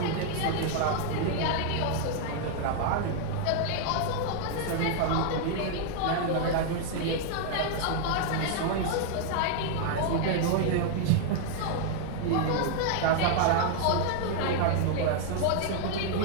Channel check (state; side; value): different; both; correlation 0.00